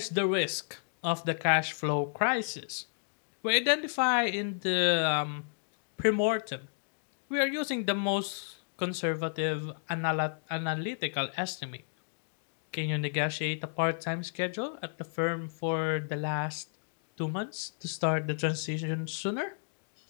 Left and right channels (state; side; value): silent; right; digital silence